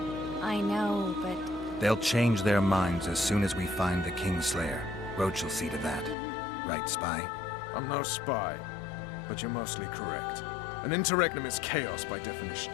I know, but... They'll change their minds as soon as we find the Kingslayer. Roach will see to that. Right, Spy? I'm no spy, but you're mostly correct. An interregnum is chaos by definition.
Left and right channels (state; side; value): drops out; right; at 6.2 s